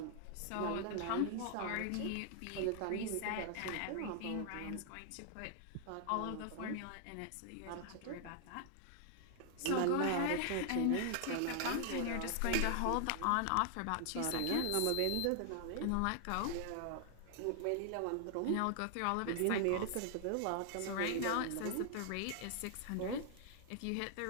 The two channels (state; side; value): different; both; correlation 0.00